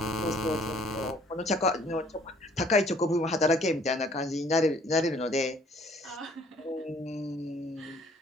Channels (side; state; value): both; normal; correlation 0.59